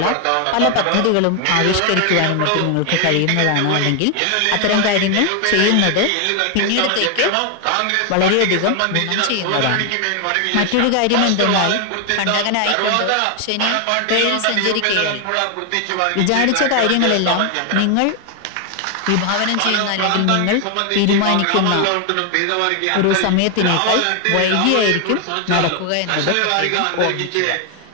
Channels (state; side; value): different; both; correlation 0.00